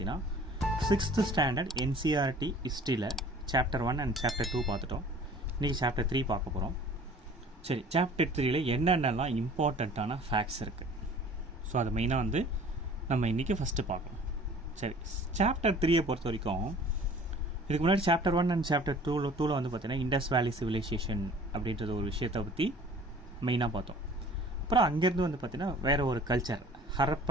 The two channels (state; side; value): normal; both; correlation 0.49